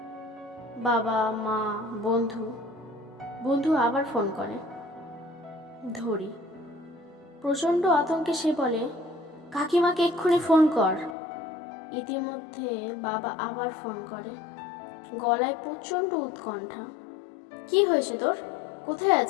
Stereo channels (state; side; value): drops out; right; at 11.2 s